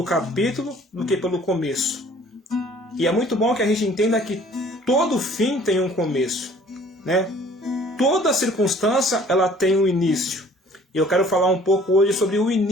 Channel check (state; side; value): normal; both; correlation 0.53